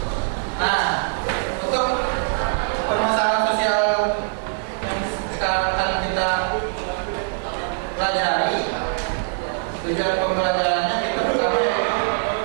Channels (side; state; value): left; silent; digital silence